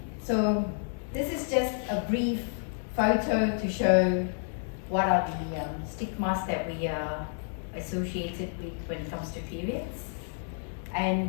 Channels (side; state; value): right; silent; 58 dB below the other